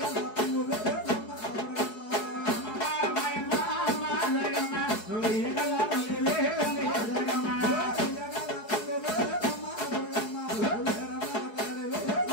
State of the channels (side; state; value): right; late; 4.7 ms